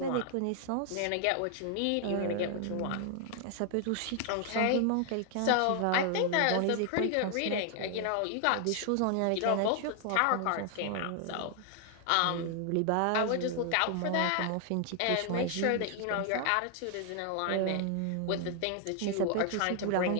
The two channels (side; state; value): both; different; correlation 0.00